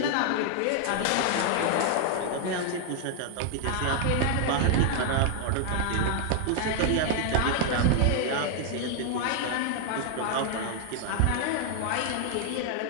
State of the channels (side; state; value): both; different; correlation 0.00